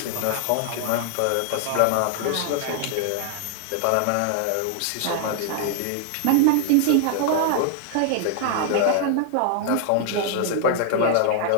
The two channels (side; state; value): both; different; correlation -0.01